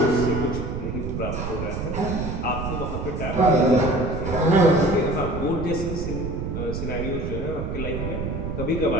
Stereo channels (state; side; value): noise; right; rumble, 4 dB below the sound